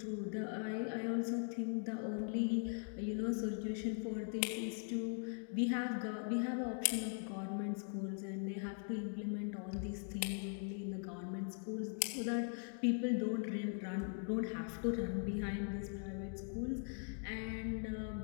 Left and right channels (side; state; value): right; silent; 50 dB below the other